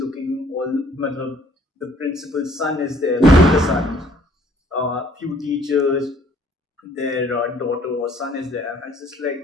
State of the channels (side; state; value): both; normal; correlation 0.60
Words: the principal's son is there, the sons, few teachers, their daughter or son is there. And I was just